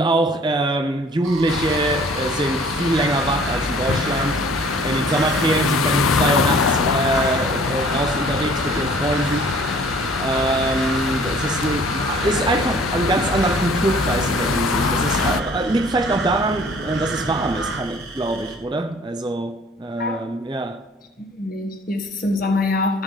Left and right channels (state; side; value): normal; both; correlation 0.53